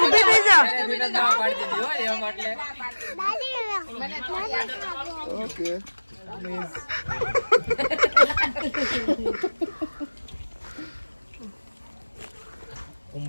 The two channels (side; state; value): both; inverted; correlation -1.00